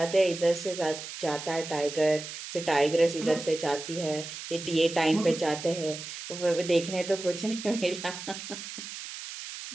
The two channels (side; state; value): right; noise; hiss, 10 dB below the sound